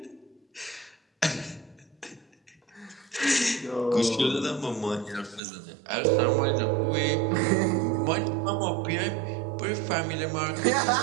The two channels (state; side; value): drops out; left; at 5.4 s